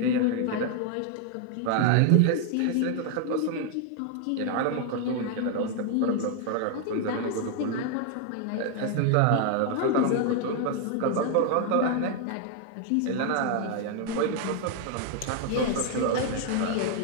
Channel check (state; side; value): different; both; correlation 0.00